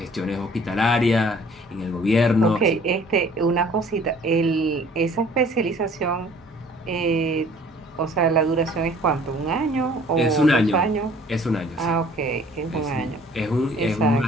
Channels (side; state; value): both; normal; correlation 0.53